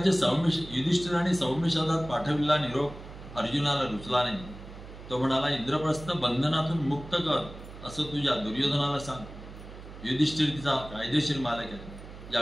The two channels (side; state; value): right; noise; hum, 15 dB below the sound